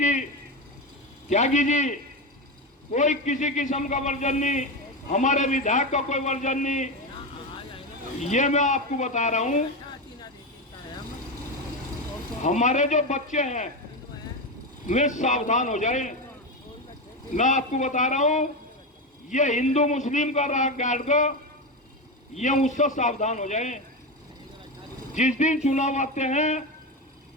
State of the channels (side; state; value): both; normal; correlation 0.16